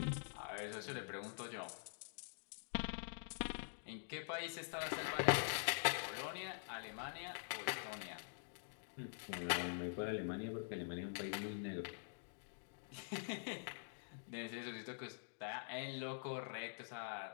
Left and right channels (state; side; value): silent; right; digital silence